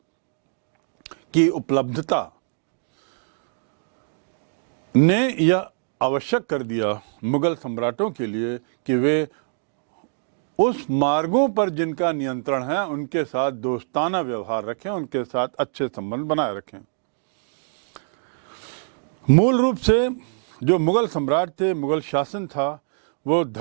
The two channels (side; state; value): left; silent; digital silence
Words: की उपलब्धता ने यह आवश्यक कर दिया मुगल सम्राटों के लिए कि वे उस मार्गों पर जिनका नियंत्रण है उनके साथ दोस्ताना व्यवहार रखें, उनके साथ अच्छे संबंध बनाए रखें। मूल रूप से जो मुगल सम्राट थे, मुगल शासन था, वो